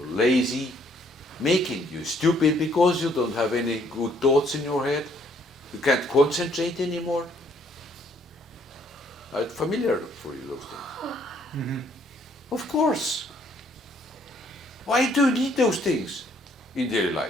lazy, making you stupid because you don't have any good thoughts in your head. You can't concentrate anymore. It's familiar for you, those things. Mm-hmm. Of course. Why do you need those things in daily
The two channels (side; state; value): both; normal; correlation 0.65